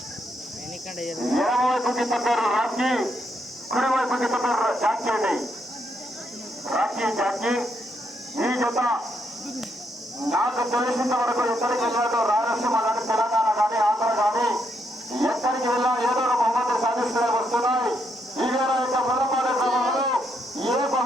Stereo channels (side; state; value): both; normal; correlation 0.77